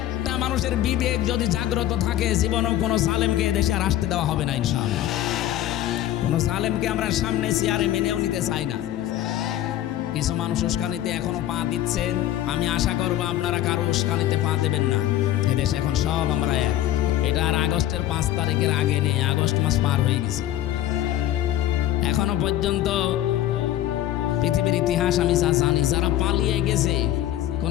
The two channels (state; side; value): quieter; right; 13.0 dB